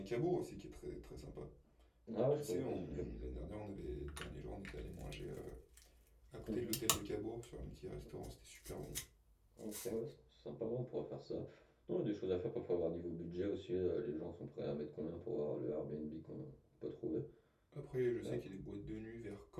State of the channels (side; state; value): both; identical; correlation 1.00